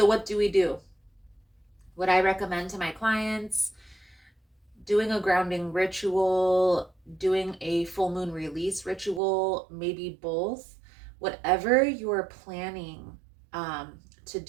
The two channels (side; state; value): left; drops out; at 9.2 s